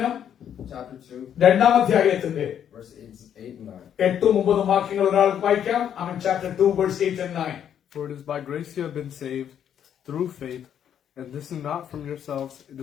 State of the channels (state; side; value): quieter; right; 9.3 dB